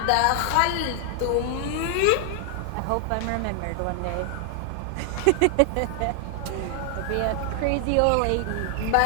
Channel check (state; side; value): different; both; correlation 0.00